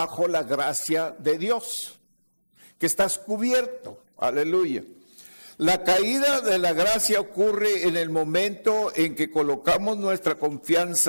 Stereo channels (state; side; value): inverted; both; correlation -1.00